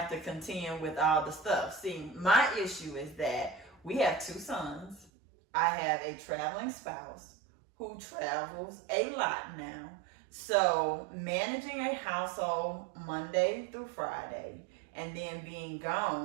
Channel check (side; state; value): left; drops out; at 5.1 s